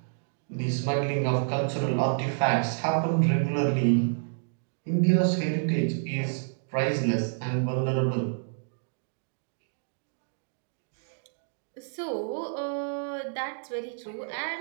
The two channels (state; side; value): silent; left; digital silence